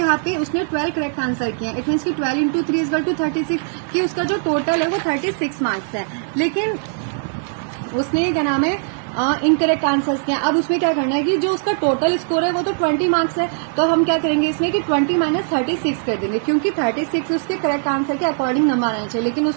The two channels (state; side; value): silent; left; digital silence